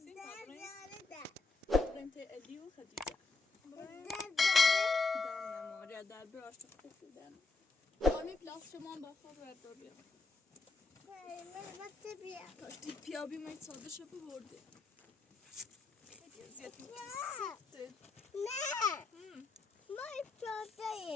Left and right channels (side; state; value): right; quieter; 3.9 dB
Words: بابریم تی الی و خدیجه در نماره در براش خوب در آمی پلاس شما با خواب برداری کاشتی پیابی مایی ساده شب برده خیلی ازیاد میکنه نه ما